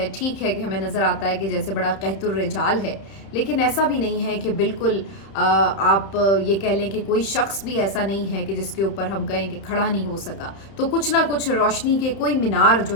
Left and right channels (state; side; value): late; right; 31 ms